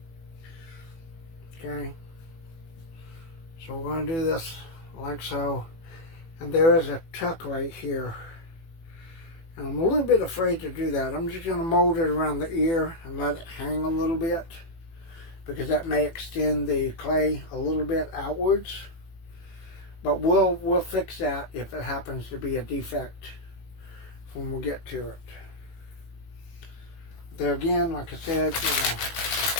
Okay, so we're going to do this like so, and there is a tuck right here, and I'm a little bit afraid to do that. I'm just going to mold it around the ear and let it hang a little bit, because that may extend the clay a little bit outwards, but we'll fix that if it happens to be a defect when we get to it. There again, like I said, you know,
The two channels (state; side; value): late; right; 18 ms